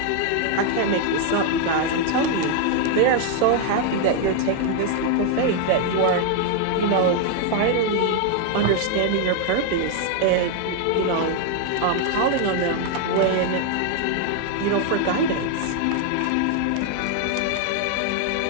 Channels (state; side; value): different; both; correlation 0.00